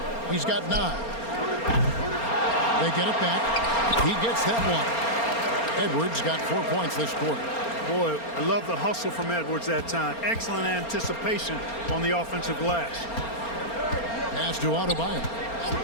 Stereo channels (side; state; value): right; late; 4.3 ms